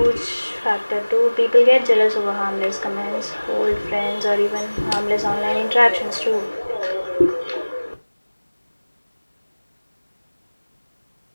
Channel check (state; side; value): inverted; both; correlation -1.00